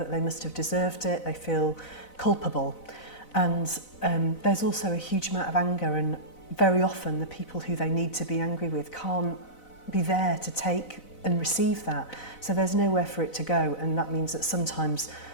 they must have deserved it, they feel culpable. And there's also a huge amount of anger, and very often the people who they need to be angry with can't be there to take and receive that. So there's nowhere for it to go, and that means that sometimes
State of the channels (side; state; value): right; late; 4.0 ms